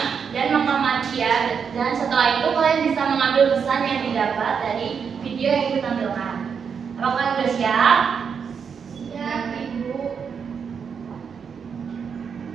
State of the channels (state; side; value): quieter; left; 6.6 dB